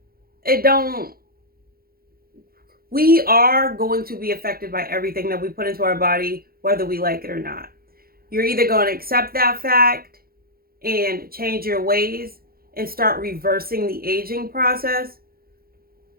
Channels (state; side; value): late; left; 0.43 ms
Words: We are going to be affected by everything that we put into our body, whether we like it or not. You're either going to accept that fact and change your ways and start reversing the aging process,